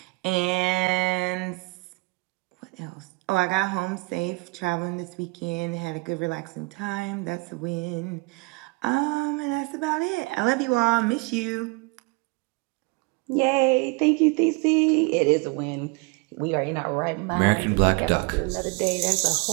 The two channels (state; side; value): quieter; left; 27.6 dB